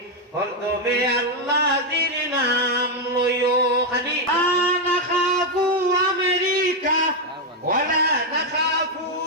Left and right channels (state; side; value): normal; both; correlation 0.03